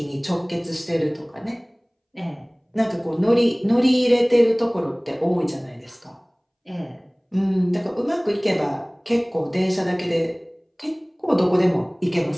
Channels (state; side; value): identical; both; correlation 1.00